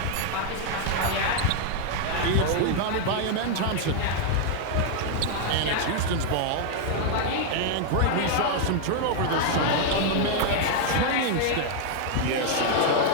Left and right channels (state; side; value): different; both; correlation 0.00